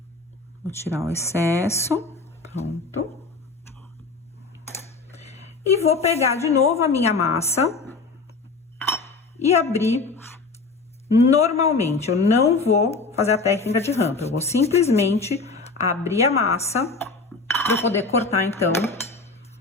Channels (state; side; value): quieter; right; 4.0 dB